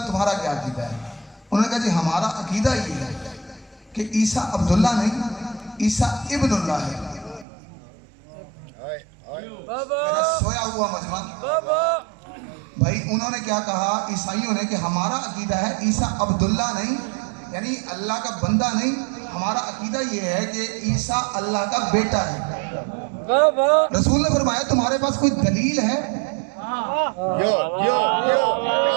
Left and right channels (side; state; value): left; drops out; at 7.5 s